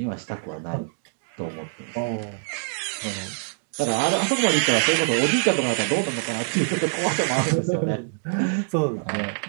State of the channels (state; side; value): silent; left; digital silence